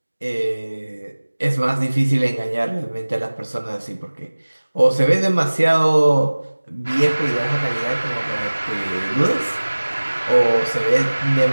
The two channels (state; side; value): inverted; both; correlation -1.00